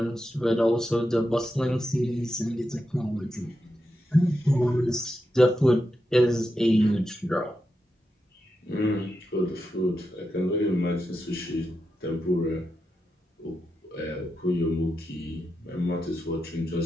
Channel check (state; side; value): normal; both; correlation 0.87